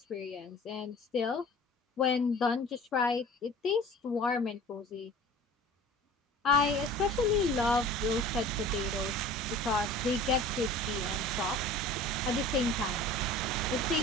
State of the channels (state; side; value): normal; both; correlation 0.43